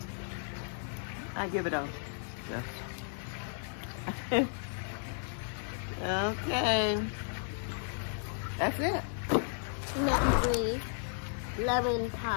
I give it a yes. Okay. That's it. Nut-free lemon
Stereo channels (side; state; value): right; silent; digital silence